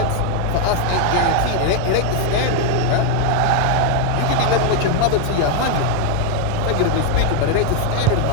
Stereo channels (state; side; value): different; both; correlation 0.01